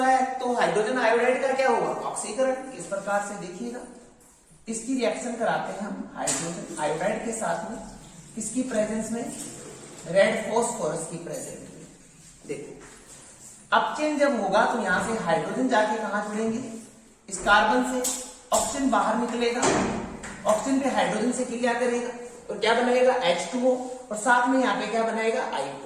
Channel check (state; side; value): identical; both; correlation 1.00